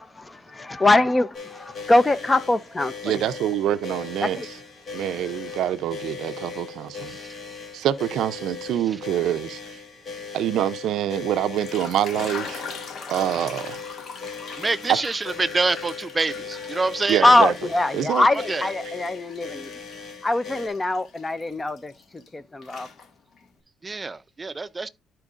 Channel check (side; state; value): both; normal; correlation 0.77